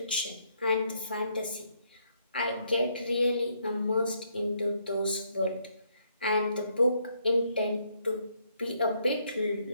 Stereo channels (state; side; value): inverted; both; correlation -0.72